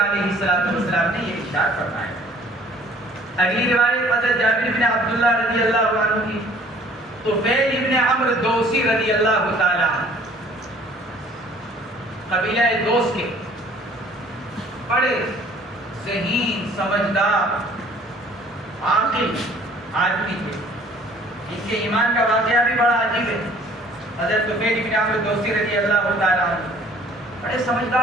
السلام نے یہ ارشاد فرمایا. اگلی روایت حضرت جابر بن عبداللہ رضی اللہ عنہ کی، طفیل ابن عمرو دوسی رضی اللہ تعالی عنہ، قبیلہ دوس کے بڑے ذہین سمجھدار عاقل آدمی تھے. ان کے ایمان کا واقعہ بھی بڑا عجیب ہے. حضرت طفیل ابن عمرو دوسی رضی اللہ تعالی عنہ بڑے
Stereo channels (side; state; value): both; normal; correlation 0.54